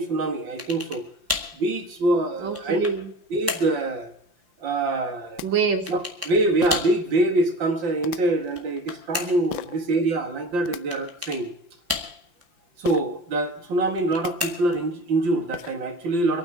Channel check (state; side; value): late; left; 5.8 ms